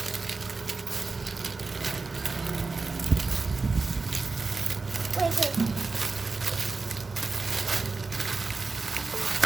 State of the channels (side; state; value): left; quieter; 4.0 dB